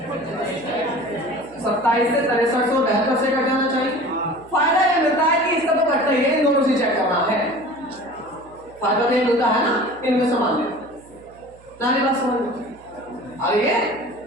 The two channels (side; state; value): right; noise; hum, 26 dB below the sound